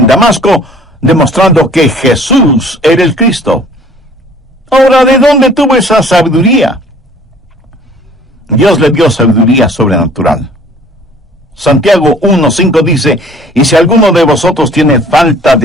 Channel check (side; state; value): both; normal; correlation 0.53